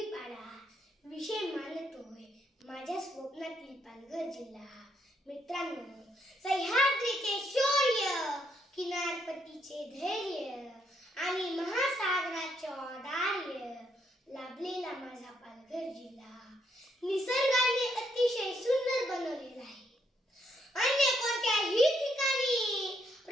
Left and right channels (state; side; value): normal; both; correlation 0.75